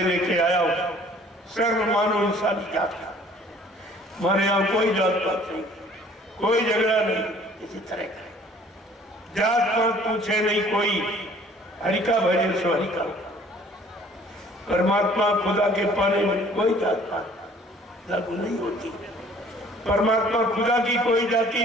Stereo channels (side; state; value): both; normal; correlation 0.54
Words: लेके आया हो। सर्व मानव इंसानी जात का, हमारे यहाँ कोई जात पात नहीं, कोई झगड़ा नहीं किसी तरह का, जात पात पूछे नहीं कोई, हरिका भजे सो हरिका। परमात्मा खुदा के पाने में कोई जात पात लागू नहीं होती। परमात्मा खुदा की कोई जाति